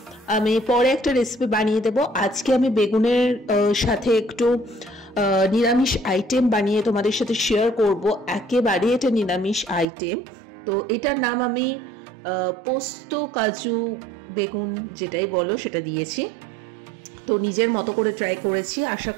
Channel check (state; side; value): drops out; left; at 9.9 s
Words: আমি পরে একটা রেসিপি বানিয়ে দেব। আজকে আমি বেগুনের সাথে একটু নিরামিষ আইটেম বানিয়ে তোমাদের সাথে শেয়ার করব। একেবারে এটা নিরামিষ আইটেম, তো এটার নাম আমি পোস্ত কাজু বেগুন যেটাই বলো সেটা দিয়েছি। তো নিজের মতো করে ট্রাই করেছি, আশা